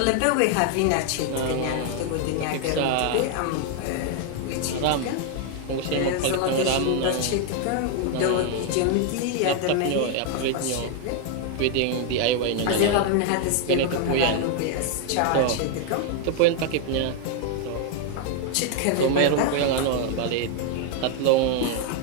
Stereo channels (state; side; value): different; both; correlation 0.00